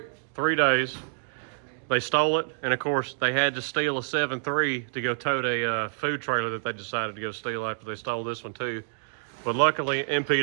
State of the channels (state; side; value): silent; left; digital silence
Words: 3 days. They stole it, and of course they had to steal a 7.3 to go tote a food trailer that they decided to go steal after they stole this one too. But luckily